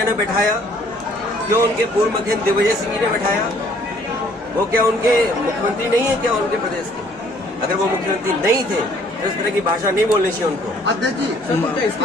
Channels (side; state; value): both; normal; correlation 0.60